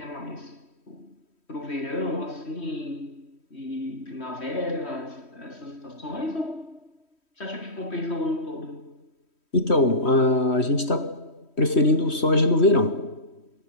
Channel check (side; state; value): right; late; 3.1 ms